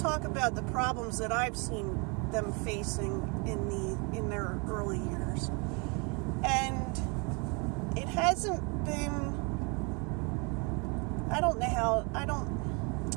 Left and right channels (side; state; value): left; quieter; 32.1 dB